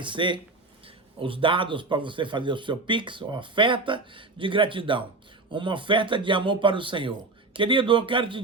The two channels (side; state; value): left; quieter; 3.4 dB